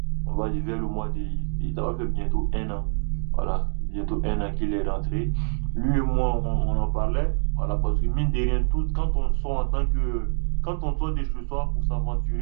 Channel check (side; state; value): left; silent; digital silence